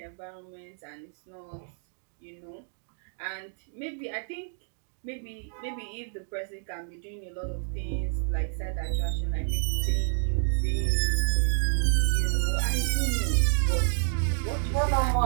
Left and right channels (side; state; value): left; silent; digital silence